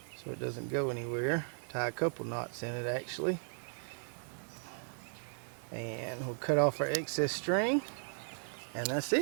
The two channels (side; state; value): left; silent; digital silence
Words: so it doesn't go anywhere. Tie a couple knots in it actually. And we'll cut off our excess string, and that's